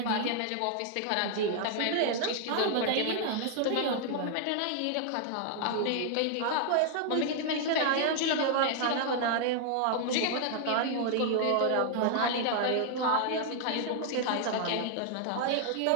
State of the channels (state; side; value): different; both; correlation 0.00